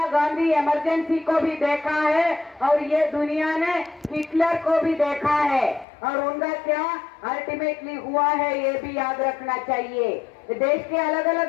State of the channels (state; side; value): drops out; right; at 5.9 s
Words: गांधी इमरजेंसी को भी देखा है और ये दुनिया ने हिटलर को भी देखा है और उनका क्या अल्टीमेटली हुआ है ये भी याद रखना चाहिए। देश के अलग